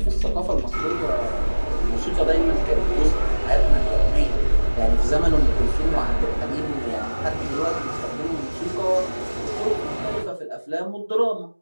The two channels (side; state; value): both; inverted; correlation -1.00